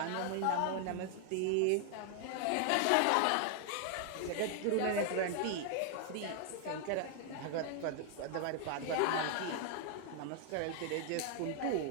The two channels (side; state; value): both; different; correlation 0.00